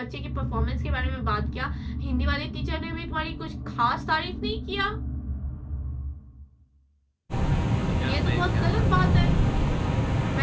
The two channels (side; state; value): both; identical; correlation 1.00